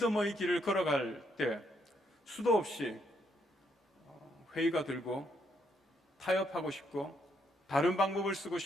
길을 걸어갈 때 수도 없이 회의가 들고 타협하고 싶고 다른 방법을 쓰고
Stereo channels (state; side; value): normal; both; correlation 0.75